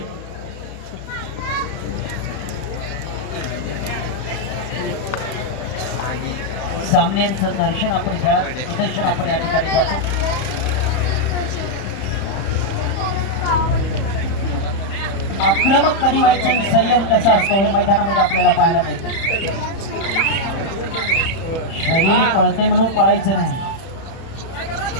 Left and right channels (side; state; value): right; late; 31 ms